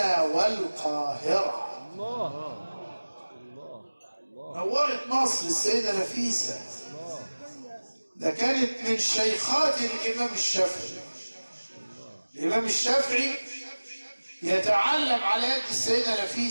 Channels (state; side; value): inverted; both; correlation -1.00